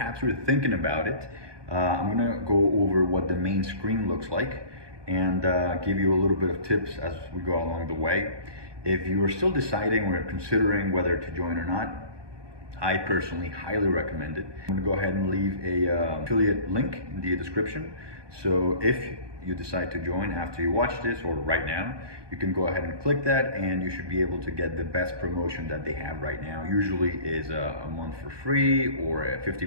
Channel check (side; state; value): left; late; 1.2 ms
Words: you're thinking about it. I'm going to go over what the main screen looks like and give you a little bit of tips as we go along the way. If you are still deciding or considering whether to join or not, I personally highly recommend it. I'm going to go ahead and leave a affiliate link in the description. So if you decide to join after you watch this or right now, you can go ahead and click that, and you should be able to get the best promotion that they have right now. Usually is a month for free or